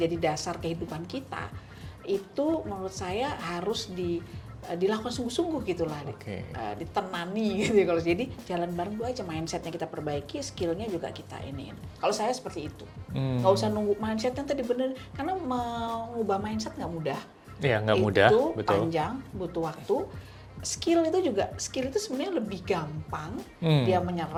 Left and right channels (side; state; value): both; identical; correlation 1.00